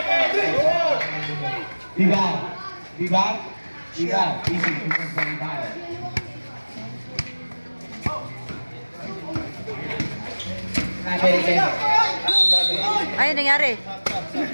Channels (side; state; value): both; inverted; correlation -1.00